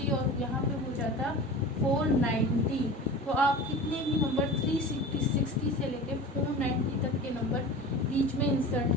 और यहाँ पे हो जाता 490। तो आप कितने भी नंबर 360 से लेके 490 तक के नंबर बीच में इंसर्ट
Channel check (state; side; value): normal; both; correlation 0.34